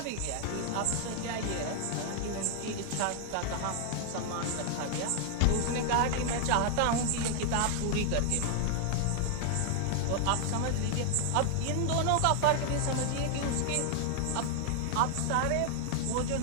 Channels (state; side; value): different; both; correlation 0.00